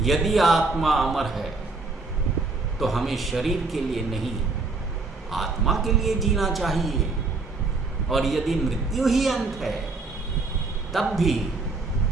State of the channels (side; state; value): left; quieter; 3.7 dB